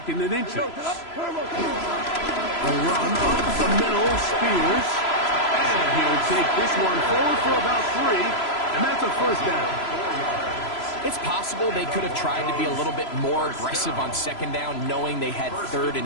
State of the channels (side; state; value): right; late; 3.0 ms